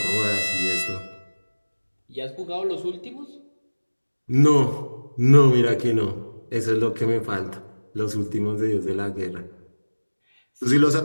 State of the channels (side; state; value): both; inverted; correlation -1.00